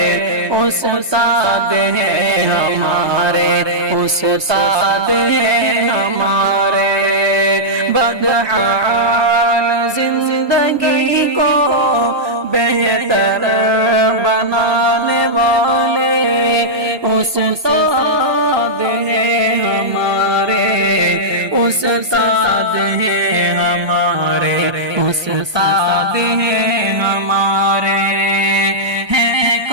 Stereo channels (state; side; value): late; left; 1.2 ms